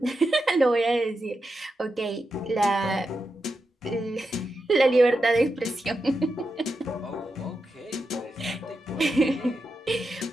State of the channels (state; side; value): normal; both; correlation 0.88